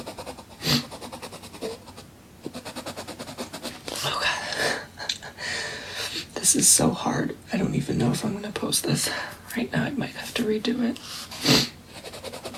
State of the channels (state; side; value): identical; both; correlation 1.00